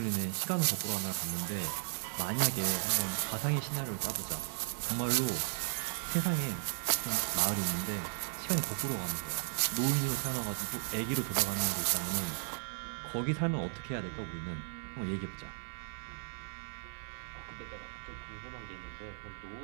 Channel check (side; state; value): left; silent; 54 dB below the other